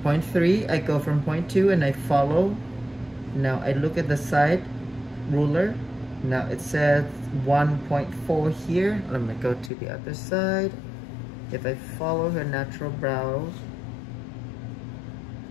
0.3, I go from 0.2 and I follow. Now I look at the side ruler. Now it says 1.4 here. Let me go to the other side. If I follow her natural brows,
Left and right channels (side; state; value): right; drops out; at 9.7 s